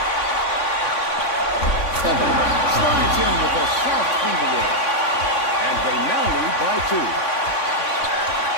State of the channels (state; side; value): late; right; 3.5 ms